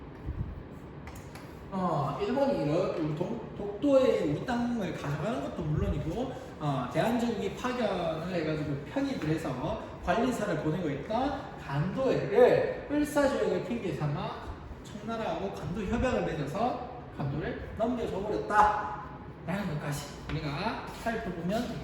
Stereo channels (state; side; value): identical; both; correlation 1.00